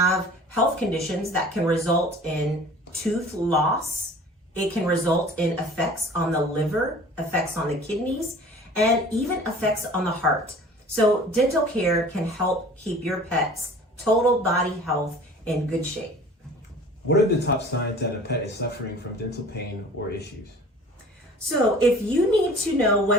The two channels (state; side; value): normal; both; correlation 0.45